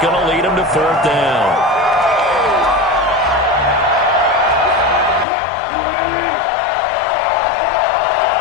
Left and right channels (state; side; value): drops out; right; at 5.2 s